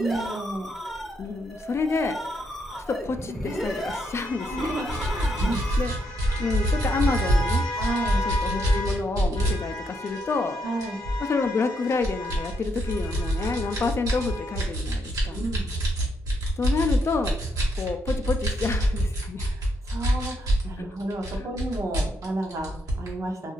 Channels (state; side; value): normal; both; correlation 0.77